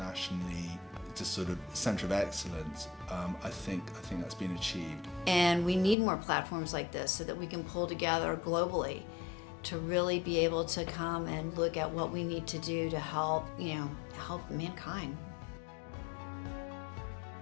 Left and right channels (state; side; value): drops out; right; at 6.0 s